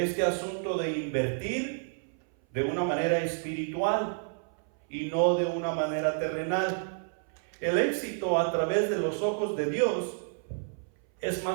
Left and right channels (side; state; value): left; silent; 58 dB below the other